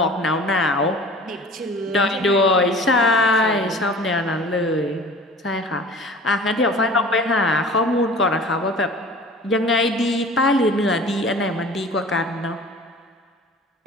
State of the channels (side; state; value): both; normal; correlation 0.43